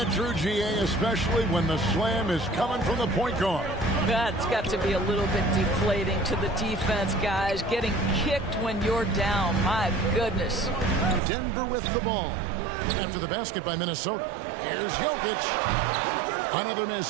true, GA, especially when the slam is coming from the point guard? That's got to be a little bit deflating to the defense, guys. Getting kicked when you're down. My goodness. Denver with the ball. After the basket by Minnesota. Here's Jokic. Another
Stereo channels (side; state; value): left; drops out; at 11.2 s